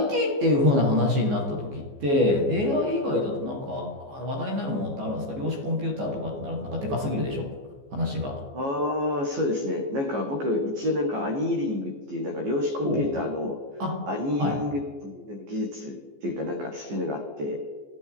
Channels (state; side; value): late; left; 14 ms